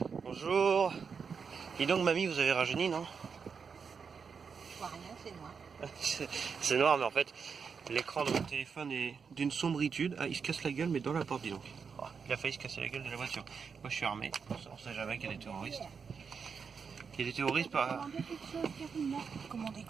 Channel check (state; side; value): quieter; left; 5.9 dB